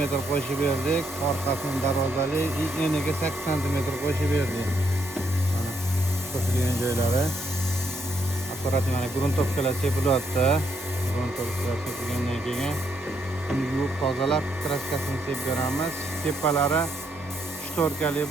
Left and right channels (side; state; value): both; normal; correlation 0.75